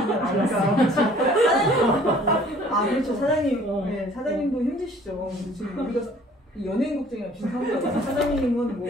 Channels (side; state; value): both; normal; correlation 0.54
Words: 사장님 그렇죠 사장님 네, 사장님도 힘드시죠. 지금 우리가 연예인 국장이랑 비슷한 거예요. 사장님은 뭐